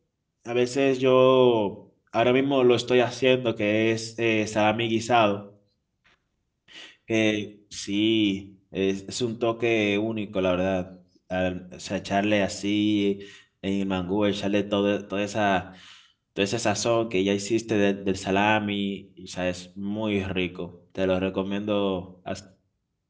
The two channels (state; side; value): identical; both; correlation 1.00